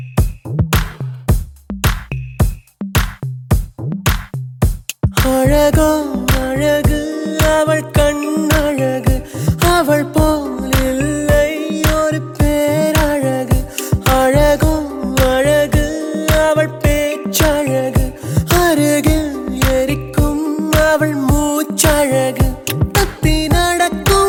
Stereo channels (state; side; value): identical; both; correlation 1.00